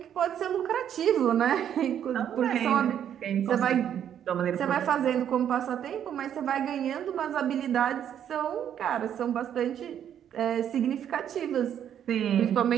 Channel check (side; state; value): left; quieter; 9.6 dB